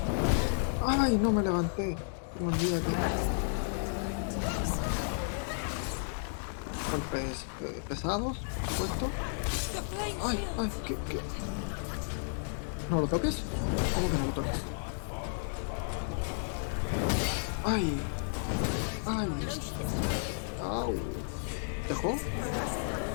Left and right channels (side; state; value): right; silent; digital silence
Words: Ay, no me levanté. Me olvidé que... Golpes pesados, supuesto. Ay, ay, ¿qué? ¿No lo toques? ¿Cómo que no lo toques? Ay, ay, au, ¿dejó?